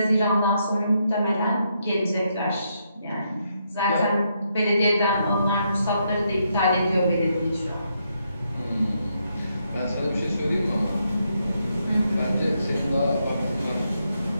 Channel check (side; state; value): both; inverted; correlation -0.79